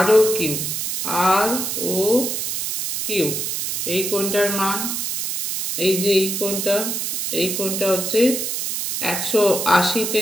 ও কিউ এই কোণটার মান, এই যে এই কোণটা হচ্ছে 180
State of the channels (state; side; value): noise; right; hiss, 2 dB below the sound